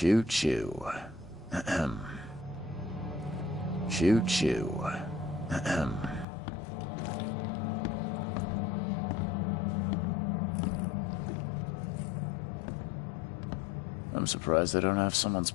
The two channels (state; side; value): drops out; right; at 6.2 s